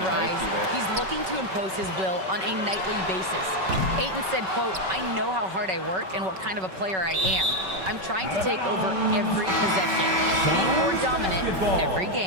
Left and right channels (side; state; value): left; late; 5.3 ms